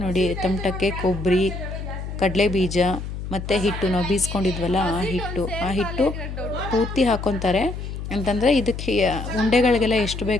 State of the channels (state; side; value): noise; left; hum, 7 dB below the sound